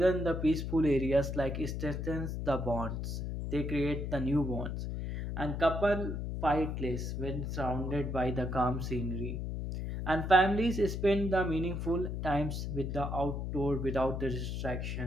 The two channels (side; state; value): left; noise; hum, 3 dB below the sound